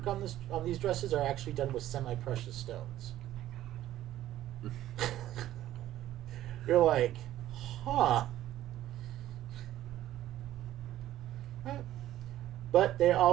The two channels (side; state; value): left; quieter; 13.5 dB